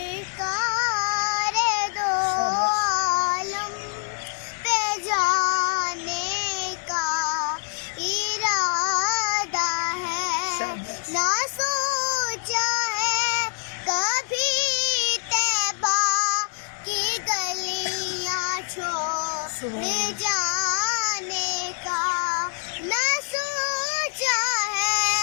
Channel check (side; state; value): right; silent; digital silence